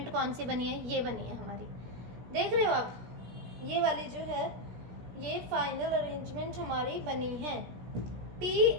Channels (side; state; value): left; late; 17 ms